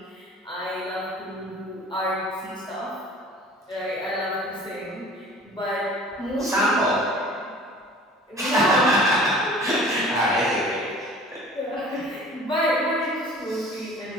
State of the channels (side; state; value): both; normal; correlation 0.46